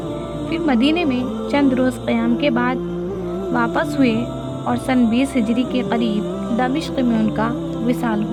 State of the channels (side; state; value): both; identical; correlation 1.00